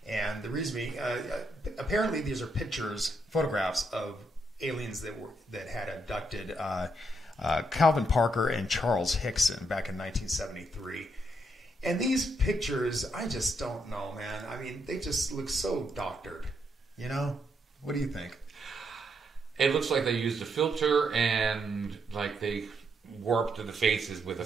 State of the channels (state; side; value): normal; both; correlation 0.78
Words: and the reason being, apparently these are photographs of aliens that had abducted Calvin Parker and Charles Hickson back in 1973. And these pictures, I just don't know, man. I mean, they just look so doctored. You know? What do you think? It looks like they used a filter and like they warped the faces with a